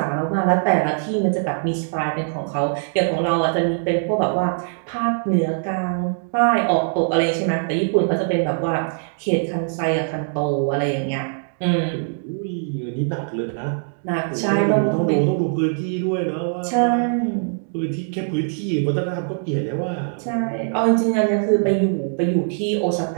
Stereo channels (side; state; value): left; silent; digital silence